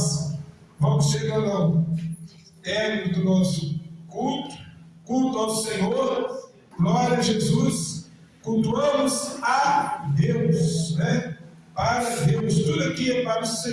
vamos chegando ao término do nosso culto ao Senhor, glória a Jesus, cultuamos a Deus, né? Para Deus, tudo aqui é para o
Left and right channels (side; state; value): both; identical; correlation 1.00